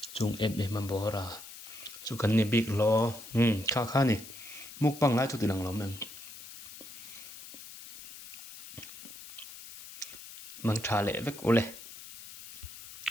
chung em mà bỏ ra chu kan ni big lo kha ni muk pang lai chu ti lang lo men mang tha le vek ole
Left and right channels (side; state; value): left; noise; hiss, 13 dB below the sound